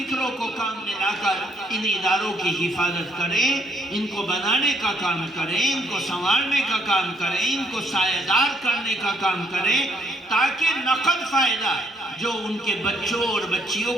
کو کام میں لا کر ان اداروں کی حفاظت کریں، ان کو بنانے کا کام کریں، ان کو سنوارنے کا کام کریں، ان کو سایہ دار کرنے کا کام کریں، تاکہ نقد فائدہ جو ان کے بچوں اور بچیوں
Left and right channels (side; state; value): both; normal; correlation 0.69